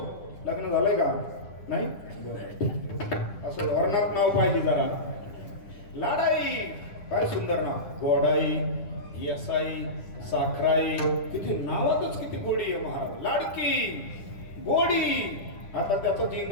लग्न झालंय का? नाही? असं धोरणात नाव पाहिजे जरा. लाडाई, काय सुंदर नाव. गोडाई, येसाई, साखराई, किती नावातच किती गोडी आहे महाराज. लाडकी, गोडी. आता त्याचंच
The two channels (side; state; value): right; late; 10 ms